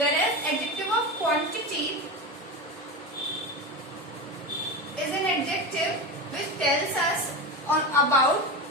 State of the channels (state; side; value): normal; both; correlation 0.21